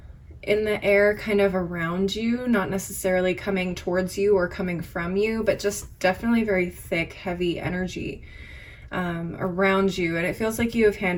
in the air kind of around you, not necessarily coming towards you or coming from you, but just definitely very thick, heavy energy around you. And it feels like you have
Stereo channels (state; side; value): identical; both; correlation 1.00